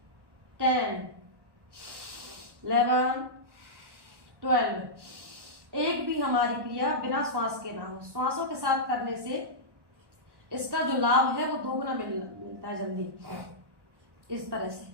10 11 12। एक भी हमारी क्रिया बिना श्वास के ना हो, श्वासों के साथ करने से इसका जो लाभ है वो दोगुना मिलता है जल्दी। इस तरह से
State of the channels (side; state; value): left; late; 1.1 ms